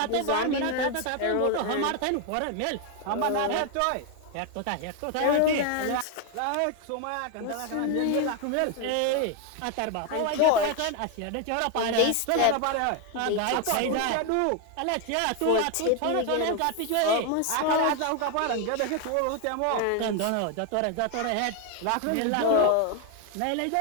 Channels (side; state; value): both; different; correlation 0.01